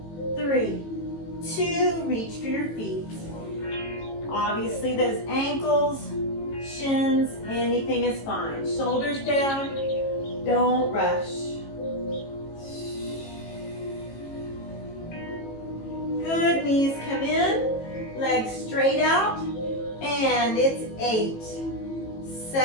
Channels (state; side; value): late; right; 18 ms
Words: 3, 2, reach for your feet. Obviously those ankles, shins, anything is fine. Shoulders down, don't rush. Good, knees come in, legs straight out, and it's 8,